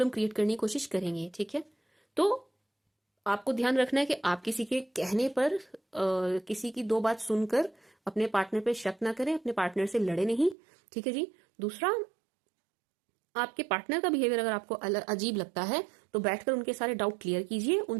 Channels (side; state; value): left; drops out; at 10.6 s